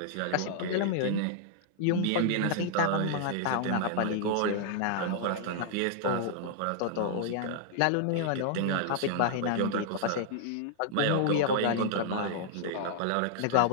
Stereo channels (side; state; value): both; different; correlation -0.01